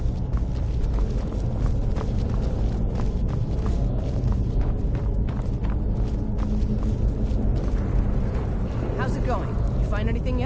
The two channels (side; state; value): both; identical; correlation 1.00